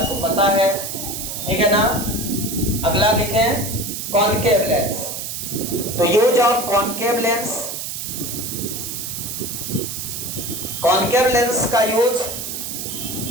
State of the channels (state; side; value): noise; right; hiss, 5 dB below the sound